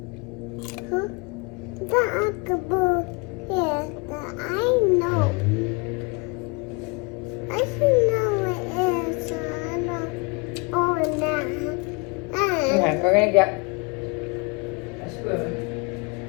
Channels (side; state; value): right; quieter; 29.7 dB